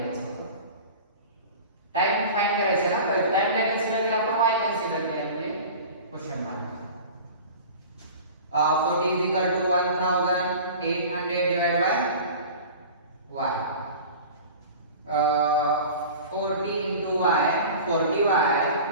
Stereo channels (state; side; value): inverted; both; correlation -0.38